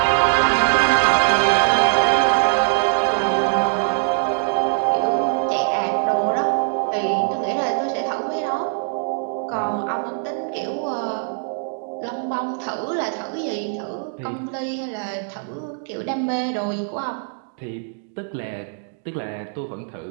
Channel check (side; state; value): left; silent; digital silence